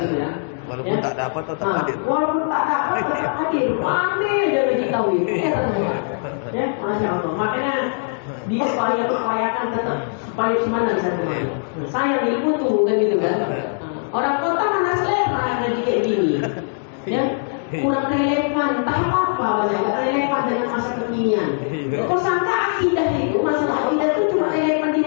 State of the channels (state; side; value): silent; right; digital silence